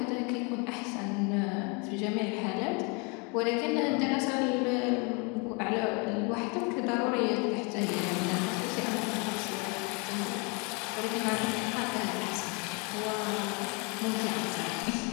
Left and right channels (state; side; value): quieter; right; 32.2 dB